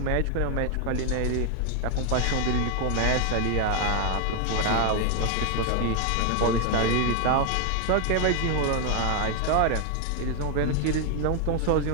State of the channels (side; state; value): both; different; correlation 0.00